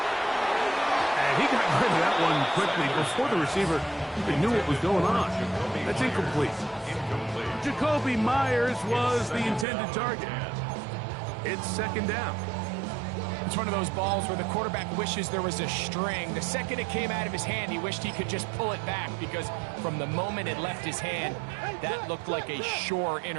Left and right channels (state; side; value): drops out; left; at 9.7 s